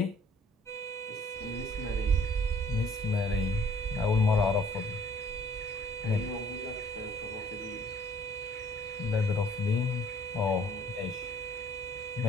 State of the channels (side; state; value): both; normal; correlation 0.58